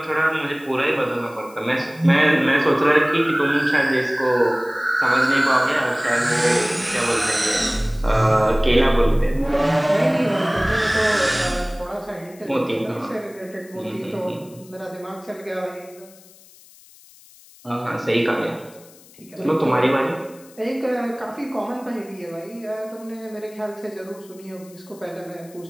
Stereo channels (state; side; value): noise; left; hiss, 24 dB below the sound